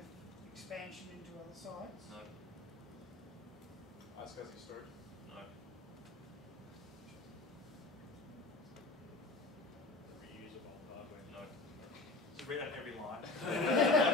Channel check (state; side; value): quieter; right; 3.4 dB